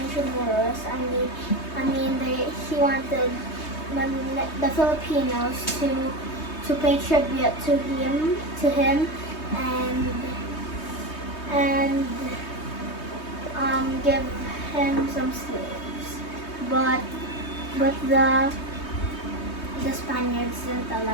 He wanted the Filipinos to pay tribute to him, and give him some slaves. But the Spaniards didn't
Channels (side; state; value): right; late; 3.2 ms